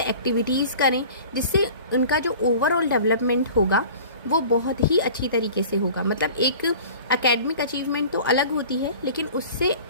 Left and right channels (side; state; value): both; inverted; correlation -0.43